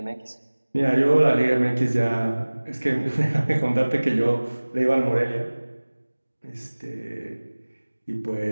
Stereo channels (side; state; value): both; inverted; correlation -1.00